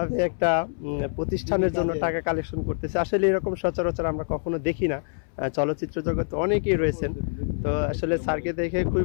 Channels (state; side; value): silent; right; 61 dB below the other